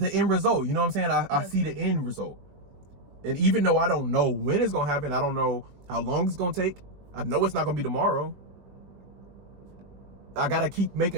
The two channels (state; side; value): late; left; 21 ms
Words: end result. You know what I'm saying? I see the end result. And even though I don't know when it's going to happen, I don't know how long it's going to take, I know it's not going to be tomorrow. I got to keep